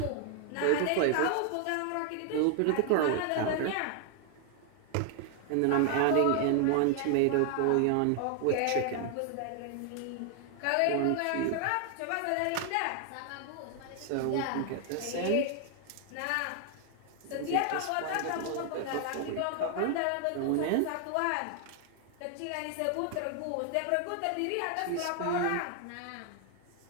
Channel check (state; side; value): different; both; correlation 0.00